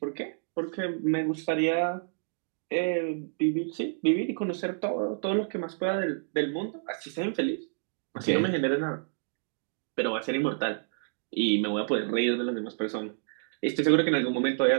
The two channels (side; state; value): left; silent; digital silence